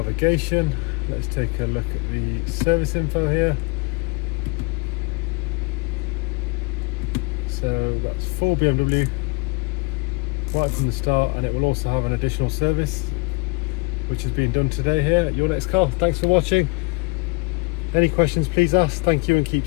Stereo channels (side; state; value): right; quieter; 25.9 dB